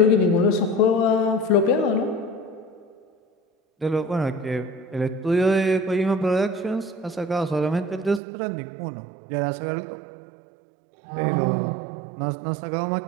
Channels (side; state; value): left; drops out; at 8.2 s